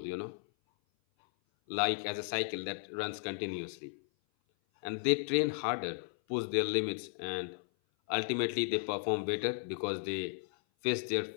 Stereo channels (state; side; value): silent; right; 55 dB below the other